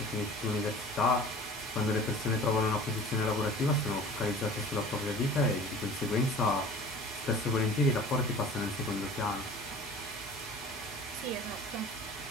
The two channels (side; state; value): both; normal; correlation 0.43